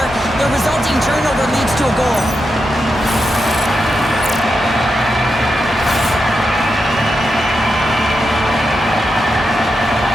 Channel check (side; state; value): both; normal; correlation 0.87